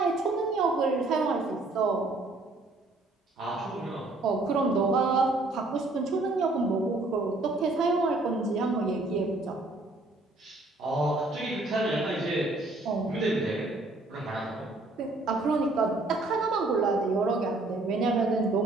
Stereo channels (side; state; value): left; quieter; 3.0 dB